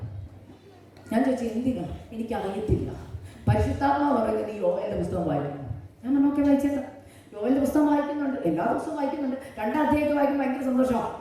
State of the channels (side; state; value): both; identical; correlation 1.00